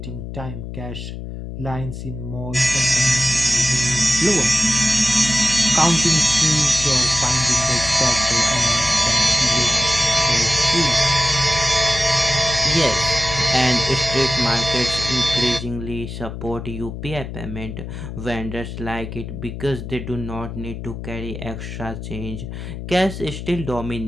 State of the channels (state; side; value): noise; left; hum, 9 dB below the sound